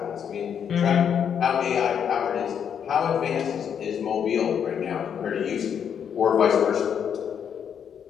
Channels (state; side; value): quieter; right; 8.0 dB